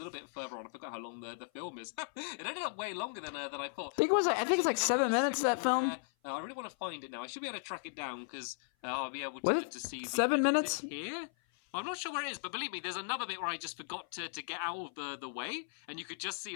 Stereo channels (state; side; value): silent; right; 54 dB below the other